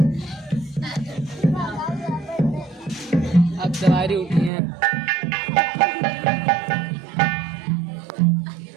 सवारी उठी है।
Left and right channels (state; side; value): drops out; left; at 4.5 s